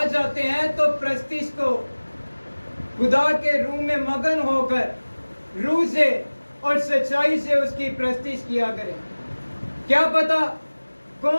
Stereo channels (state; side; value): inverted; both; correlation -1.00